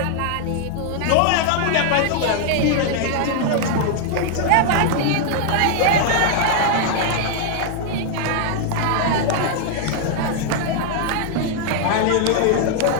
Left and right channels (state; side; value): different; both; correlation 0.00